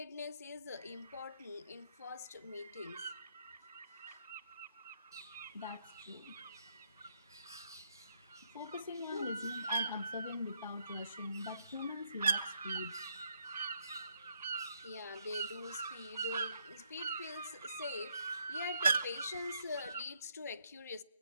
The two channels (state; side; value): inverted; both; correlation -0.75